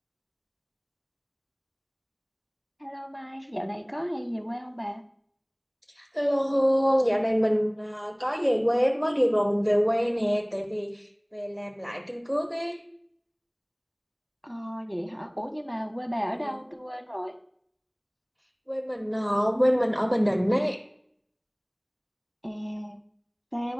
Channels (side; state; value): both; identical; correlation 1.00